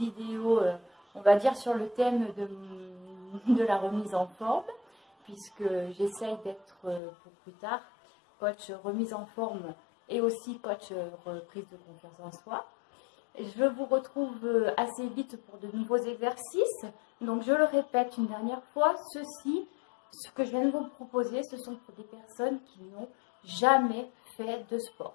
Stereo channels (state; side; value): drops out; right; at 7.0 s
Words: on va dire sur le thème de la remise en forme, puisque j'essaye d'être pour plus tard coach remise en forme et aussi coach reprise de confiance en soi. Je vous retrouve assez vite pour de nouveaux exercices. Donc je le répète une dernière fois, ce que je viens de vous proposer, ce sont pour des personnes qui n'ont jamais fait de sport